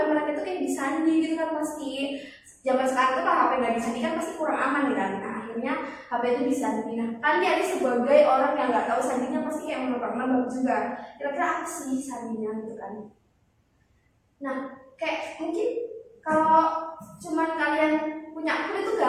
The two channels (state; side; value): identical; both; correlation 1.00